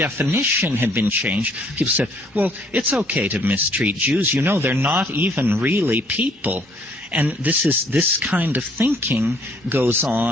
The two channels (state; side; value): normal; both; correlation 0.62